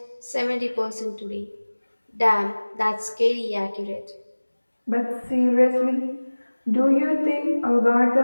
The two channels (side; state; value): both; inverted; correlation -1.00